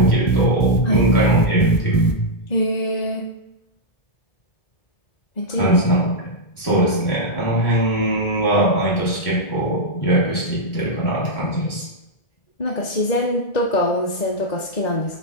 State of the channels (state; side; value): late; right; 1.7 ms